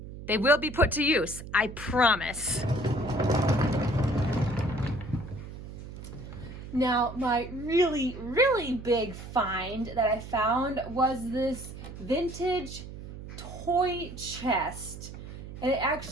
they will be put to use, I promise. Now, my really big find that I found was this vintage toy chest. And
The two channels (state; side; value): noise; right; hum, 12 dB below the sound